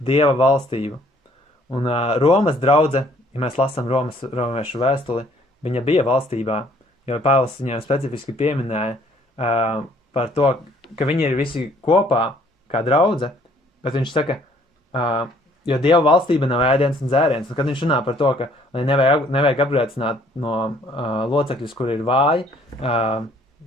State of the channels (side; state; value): both; normal; correlation 0.61